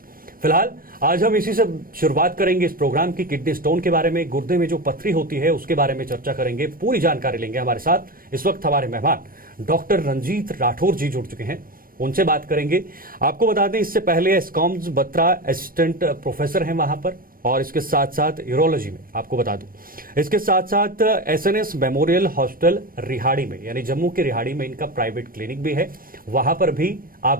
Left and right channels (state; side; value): late; left; 0.41 ms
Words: फिलहाल आज हम इसी से शुरुआत करेंगे इस प्रोग्राम की। किडनी स्टोन के बारे में, गुर्दे में जो पथरी होती है उसके बारे में चर्चा करेंगे, पूरी जानकारी लेंगे। हमारे साथ इस वक्त हमारे मेहमान डॉक्टर रंजीत राठौर जी जुड़ चुके हैं, उनसे बात करेंगे। आपको बता दें, इससे पहले एस्कॉम्स बत्रा असिस्टेंट प्रोफेसर हैं वहां पर, और इसके साथ साथ यूरोलॉजी में आपको बता दूं, इसके साथ साथ एसएनएस मेमोरियल हॉस्पिटल रिहाड़ी में, यानी जम्मू के रिहाड़ी में इनका प्राइवेट क्लिनिक भी है। वहां पर भी